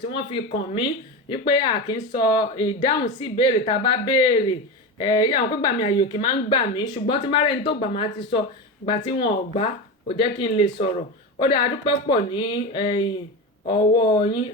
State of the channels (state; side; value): normal; both; correlation 0.21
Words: tí wọ́n fi kàn mí wípé a kì í sọ ìdáhùn sí ìbéèrè tá a bá béèrè àwọn pé gbà mí àyè òkè máa ń gbà mí ṣùgbọ́n tí márẹ́ni tó gbà máa ti sọ ìgbà tí wọn ò gbà kò jẹ́ kí n lè sọ̀rọ̀ ó dáa adúpẹ́ pọ̀ ní ọwọ́ yín